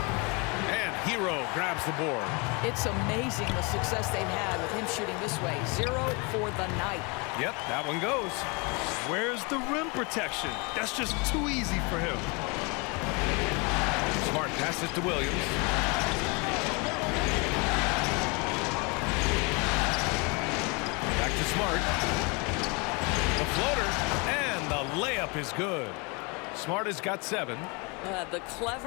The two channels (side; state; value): right; quieter; 30.3 dB